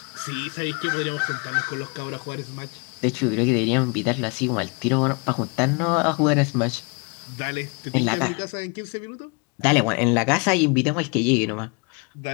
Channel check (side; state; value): right; quieter; 32.1 dB